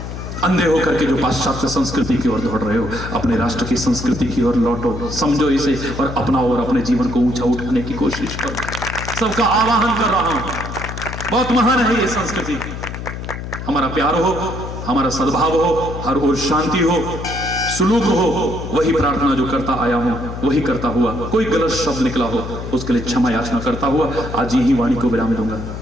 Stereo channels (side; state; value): left; noise; hum, 8 dB below the sound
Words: अंधे होकर के जो पाश्चात्य संस्कृति की ओर दौड़ रहे हो अपने राष्ट्र की संस्कृति की ओर लौटो समझो इसे और अपनाओ और अपने जीवन को ऊंचा उठाने की कोशिश करो सबका आवाहन कर रहा हूं बहुत महान है ये संस्कृति हमारा प्यार हो, हमारा सद्भाव हो, हर ओर शांति हो, सुलूक हो, वही प्रार्थना जो करता आया हूं, वही करता हुआ। कोई गलत शब्द निकला हो उसके लिए क्षमा याचना करता हुआ आज यही वाणी को विराम दूंगा।